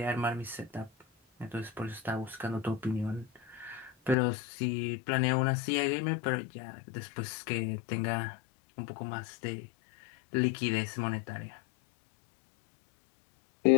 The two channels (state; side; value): drops out; right; at 4.2 s